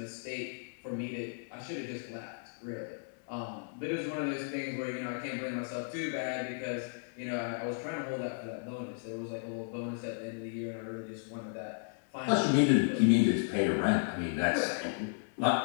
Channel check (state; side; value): silent; right; 55 dB below the other